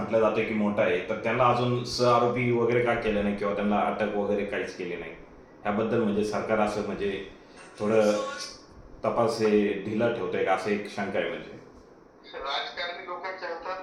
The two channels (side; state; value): both; identical; correlation 1.00